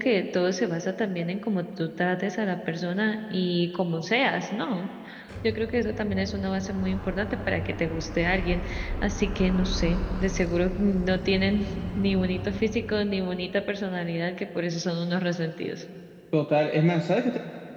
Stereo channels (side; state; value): both; identical; correlation 1.00